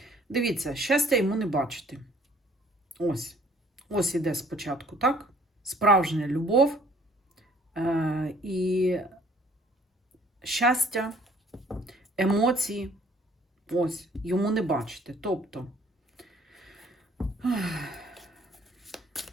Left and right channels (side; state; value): both; normal; correlation 0.58